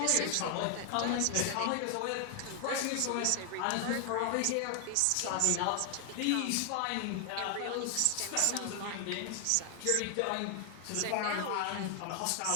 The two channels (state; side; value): different; both; correlation 0.00